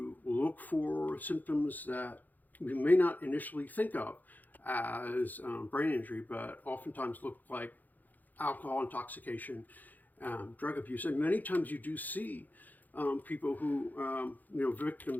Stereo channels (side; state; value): right; late; 0.083 ms